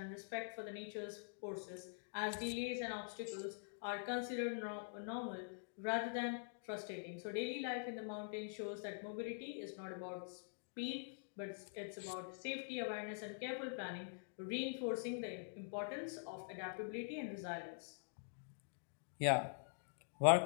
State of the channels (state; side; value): silent; right; digital silence